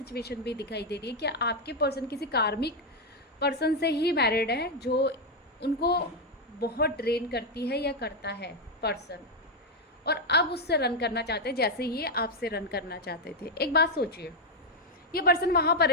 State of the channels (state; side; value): normal; both; correlation 0.03